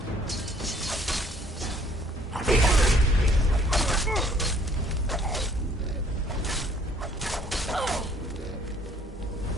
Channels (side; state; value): both; normal; correlation 0.59